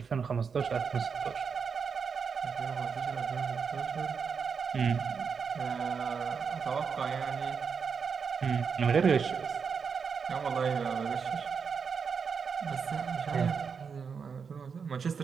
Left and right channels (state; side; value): quieter; left; 6.0 dB